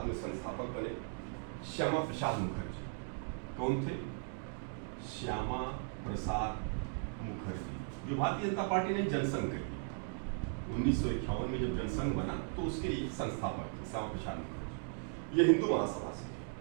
में संस्थापक बने, श्यामा प्रसाद मुखर्जी। कौन थे? श्यामा प्रसाद मुखर्जी, जो भारतीय जनता पार्टी ने जनसंघ कर दी 1951 में जब जनसंघ बना तो उसके संस्थापक थे श्यामा प्रसाद मुखर्जी। ये हिंदू महासभा से थे।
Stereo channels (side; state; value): left; silent; 53 dB below the other